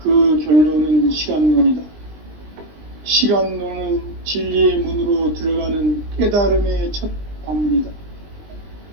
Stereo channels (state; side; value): late; left; 20 ms